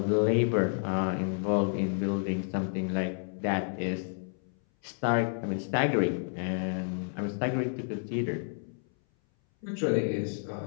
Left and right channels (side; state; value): right; silent; 58 dB below the other